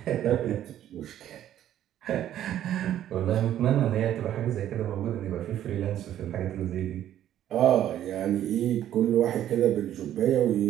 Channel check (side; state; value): left; quieter; 11.5 dB